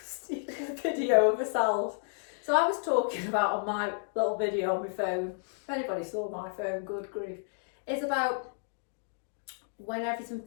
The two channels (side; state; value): right; silent; digital silence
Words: a video of ourselves. So, I was talking about on my little video on my phone. If anybody saw my phone, good grief. It's about when everything